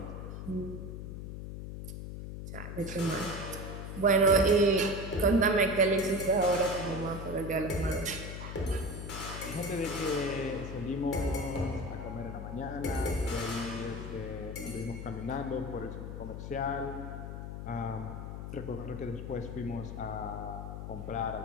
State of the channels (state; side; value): noise; left; hum, 7 dB below the sound